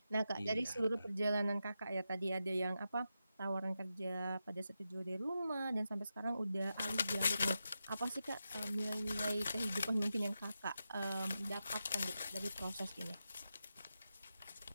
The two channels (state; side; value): inverted; both; correlation -0.89